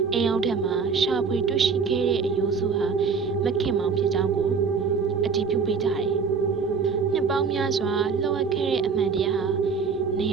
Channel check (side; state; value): left; quieter; 5.4 dB